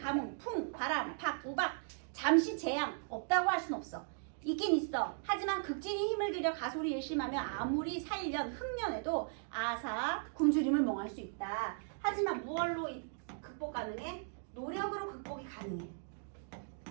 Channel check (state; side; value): silent; left; digital silence